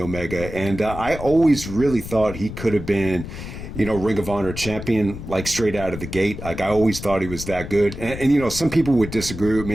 and I always really thought he could have been, Ring of Honor champion, like straight out of the gate. Like I always thought he was that good. And some people would disagree with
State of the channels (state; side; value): noise; left; rumble, 10 dB below the sound